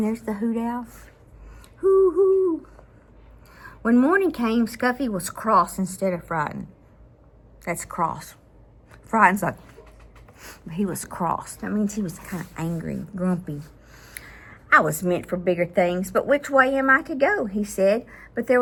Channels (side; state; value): both; identical; correlation 1.00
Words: there's the hoot owl. Hoo, hoo. When morning came, Scuffy was cross instead of frightened. That's cross. Frightened's like, he was cross. That means he was kind of angry, grumpy. I was meant for bigger things, but which way am I to go? He said. But there